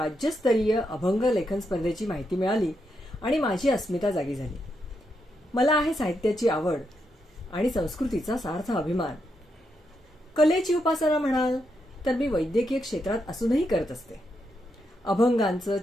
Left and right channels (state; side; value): normal; both; correlation 0.82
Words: अभंग लेखन स्पर्धेची माहिती मिळाली आणि माझी अस्मिता जागी झाली. मला आहे साहित्याची आवड आणि संस्कृतीचा सार्थ अभिमान. कलेची उपासना म्हणाल तर मी वैद्यकीय क्षेत्रात असूनही करत असते. अभंगांचं